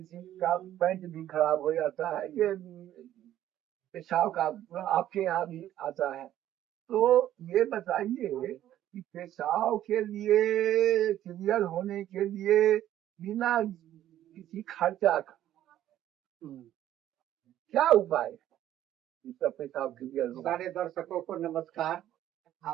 का पैंट भी खराब हो जाता है। ये पेशाब का आपके यहाँ भी आता है, तो ये बताइए कि पेशाब के लिए क्लियर होने के लिए बिना किसी खर्चा का क्या उपाय है इसका पेशाब क्लियर हो? सारे दर्शकों को नमस्कार,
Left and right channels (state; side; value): quieter; left; 12.3 dB